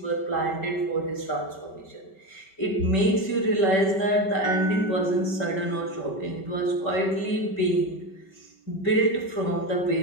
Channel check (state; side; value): late; right; 5.2 ms